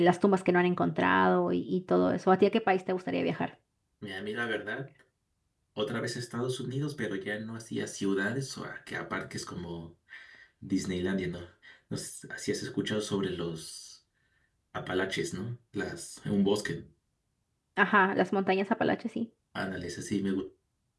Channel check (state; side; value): identical; both; correlation 1.00